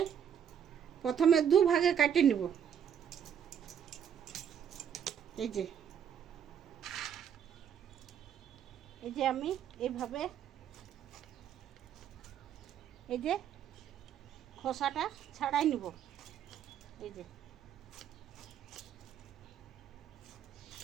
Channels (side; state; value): left; quieter; 8.6 dB